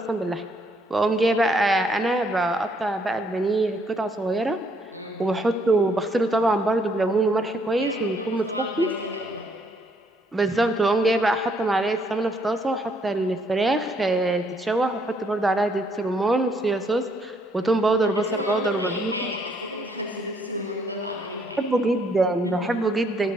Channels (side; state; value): both; normal; correlation 0.69